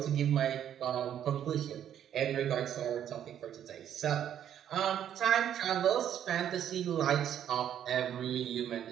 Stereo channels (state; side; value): quieter; left; 10.0 dB